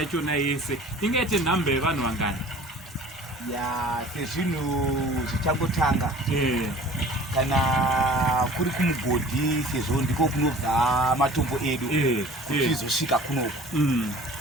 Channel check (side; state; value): both; normal; correlation 0.46